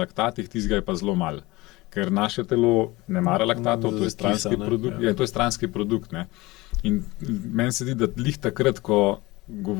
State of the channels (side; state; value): right; quieter; 20.7 dB